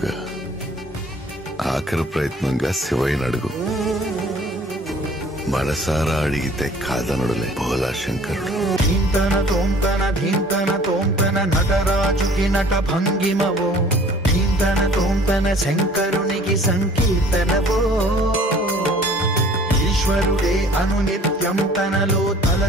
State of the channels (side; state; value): both; normal; correlation 0.51